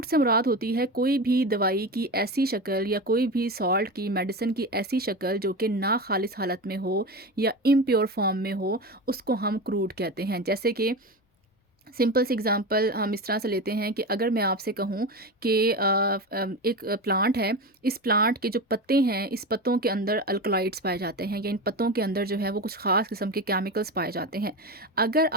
से मुराद होती है कोई भी दवाई की ऐसी शक्ल या कोई भी सॉल्ट की, मेडिसिन की ऐसी शक्ल जो कि ना खालिस हालत में हो या इम्प्योर फॉर्म में हो, उसको हम क्रूड कहते हैं। जैसे कि सिंपल सी एग्जांपल हम इस तरह से लेते हैं कि अगर मैं आपसे कहूँ कि एक प्लांट है, इस प्लांट के जो पत्ते हैं, इस पत्तों के अंदर अल्कलॉइड्स पाए जाते हैं या इन पत्तों के अंदर जो है वो कुछ ख़ास किस्म के केमिकल्स पाए जाते हैं। अगर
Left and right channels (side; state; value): both; normal; correlation 0.23